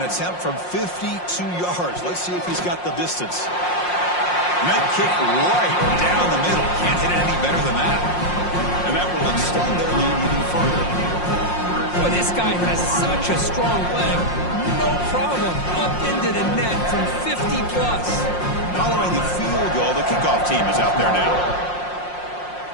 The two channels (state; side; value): late; right; 5.6 ms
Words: attempt from 52 yards. Let's see if he's got the distance. Med kick right down the middle. Can't hit it any better than that. And that will extend their lead even further. Boy, this guy has such a strong leg. No problem. Up into the net from 50+. Following the field goal, the kickoff team is out there now.